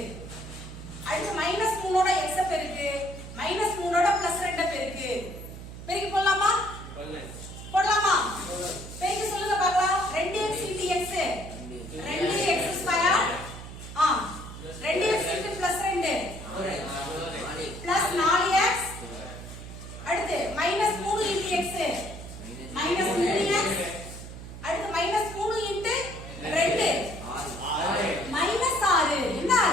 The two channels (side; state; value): right; noise; hum, 12 dB below the sound